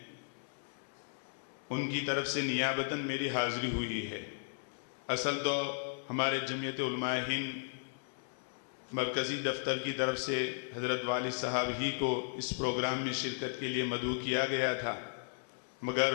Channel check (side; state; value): right; silent; digital silence